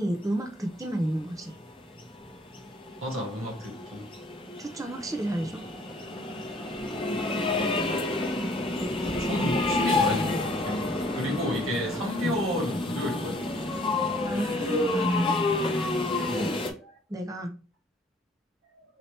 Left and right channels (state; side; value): normal; both; correlation 0.59